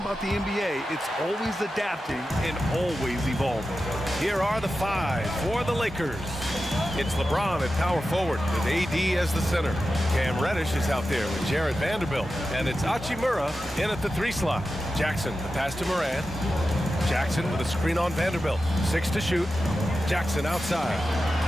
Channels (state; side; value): normal; both; correlation 0.92